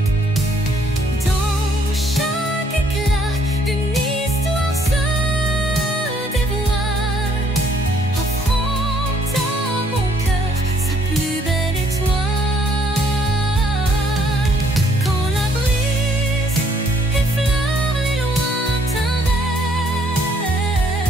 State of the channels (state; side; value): normal; both; correlation 0.65